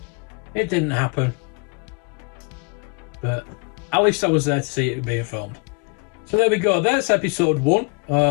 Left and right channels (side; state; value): right; quieter; 33.2 dB